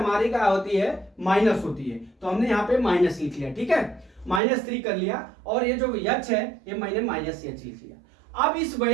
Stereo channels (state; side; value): drops out; left; at 4.4 s